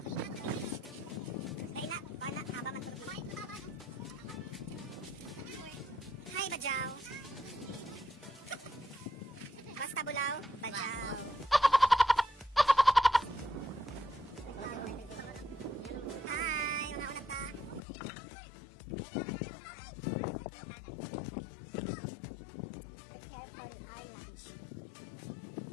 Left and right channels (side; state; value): right; drops out; at 17.8 s